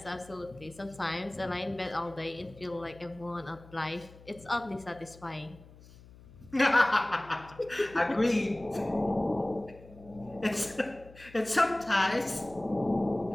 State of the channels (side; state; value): left; noise; hum, 21 dB below the sound